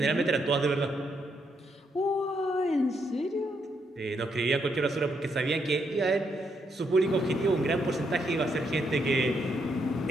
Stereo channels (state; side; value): normal; both; correlation 0.77